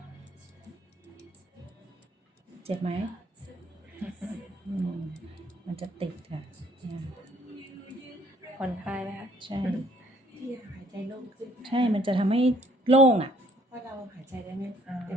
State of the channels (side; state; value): both; normal; correlation 0.61